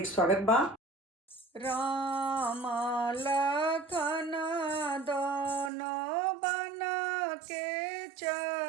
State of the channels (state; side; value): drops out; left; at 5.7 s